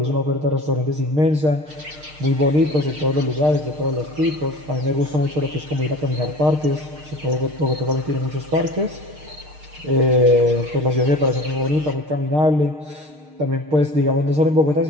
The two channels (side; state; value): left; late; 6.6 ms